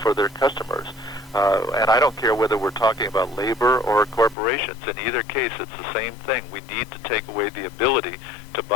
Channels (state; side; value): drops out; right; at 4.4 s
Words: for their customers. And I don't care whether we're talking about labor or corporations. In either case, it's the same thing. We need to take away the ability